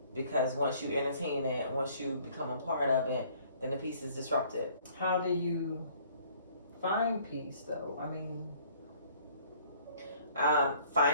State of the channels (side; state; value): both; inverted; correlation -0.58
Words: because once you entertain it, once you become a part of it, then the peace is disrupted. How do you find peace though?